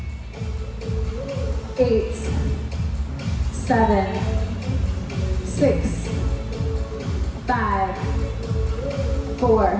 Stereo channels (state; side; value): identical; both; correlation 1.00